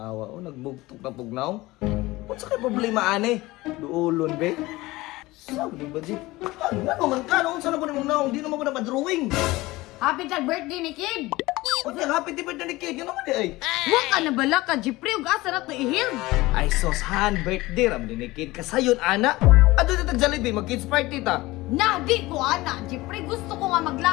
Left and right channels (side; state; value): right; quieter; 19.8 dB